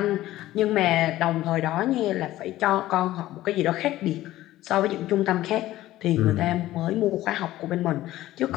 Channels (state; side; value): quieter; right; 15.3 dB